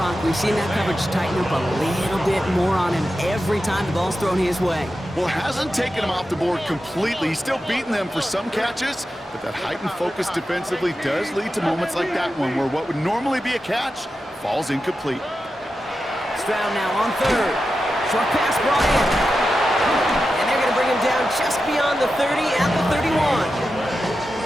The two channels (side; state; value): both; normal; correlation 0.91